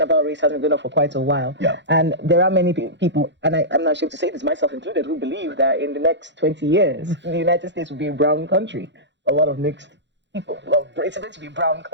about race has been going on for quite a while. Yeah. And there are many people, and I'm not ashamed to say this, myself included, who believe that in the next 20 years, the United States will be a brown country. A lot of mixed people. Well, it's going to be a brown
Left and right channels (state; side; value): late; left; 0.52 ms